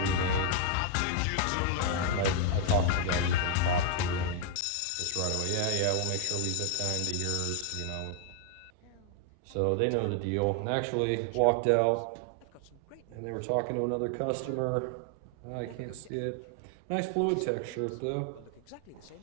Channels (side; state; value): both; different; correlation 0.00